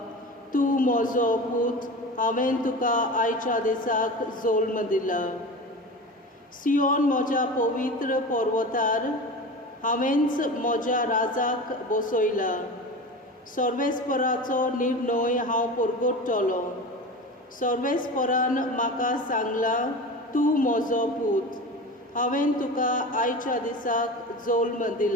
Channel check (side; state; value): both; normal; correlation 0.30